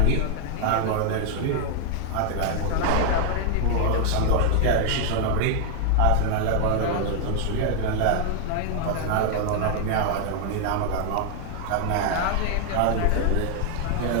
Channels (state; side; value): different; both; correlation 0.00